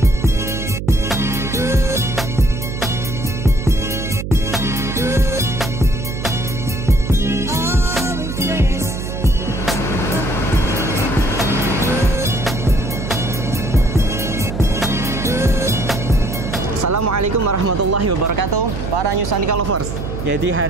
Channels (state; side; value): noise; right; hum, 5 dB below the sound